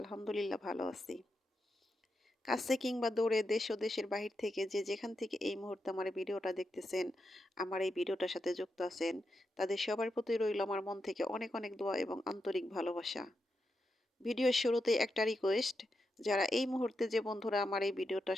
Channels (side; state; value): both; normal; correlation 0.86